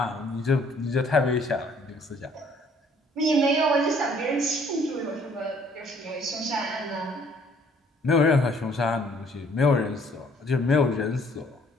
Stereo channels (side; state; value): both; normal; correlation 0.60